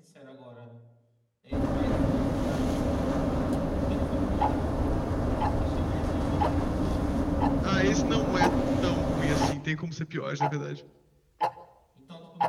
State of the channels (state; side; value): identical; both; correlation 1.00